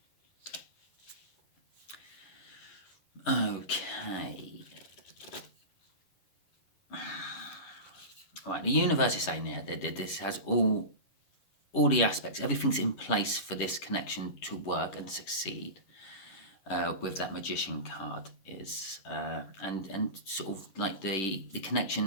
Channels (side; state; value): right; late; 10 ms